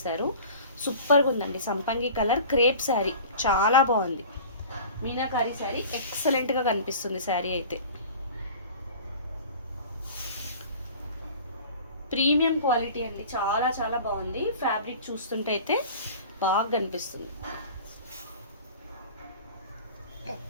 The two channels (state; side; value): inverted; both; correlation -0.41